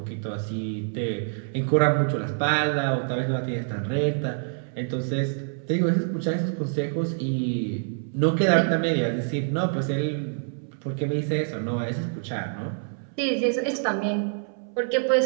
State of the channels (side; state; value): left; silent; 61 dB below the other